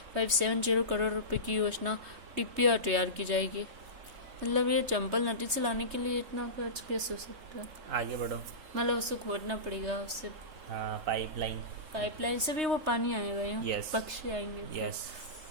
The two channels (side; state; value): left; late; 3.2 ms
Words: 570 करोड़ रुपए की योजना DPR तैयार की जाएगी। मतलब ये चंबल नदी से लाने के लिए इतना खर्च कैसे हो सकता है? आगे बढ़ो। मतलब उसको खोदना पड़ेगा, उससे हाँ, पाइपलाइन से भी वो पानी आएगा यहाँ। Yes. पक्षी आएंगे। यस।